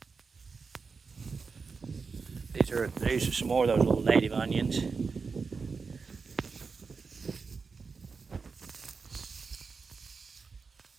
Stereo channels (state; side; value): quieter; left; 4.9 dB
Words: These are some more of those little native onions.